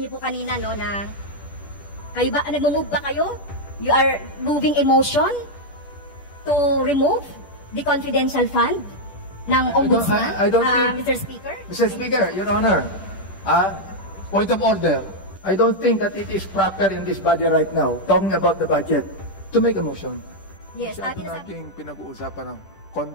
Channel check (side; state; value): right; late; 10 ms